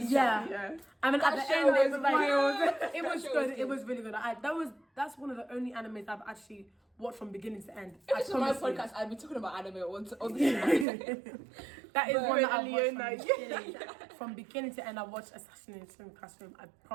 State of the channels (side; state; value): left; drops out; at 10.9 s